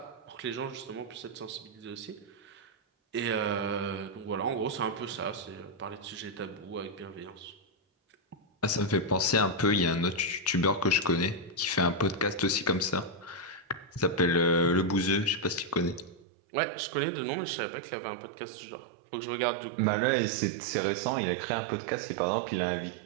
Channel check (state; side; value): drops out; left; at 16.2 s